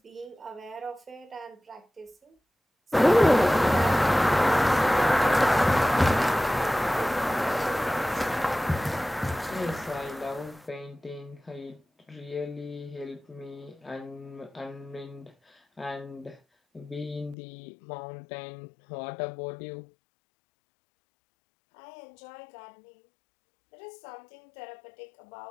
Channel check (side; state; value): right; drops out; at 17.4 s